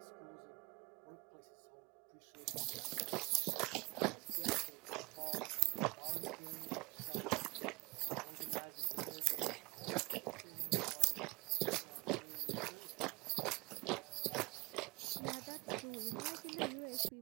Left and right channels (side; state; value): left; quieter; 25.1 dB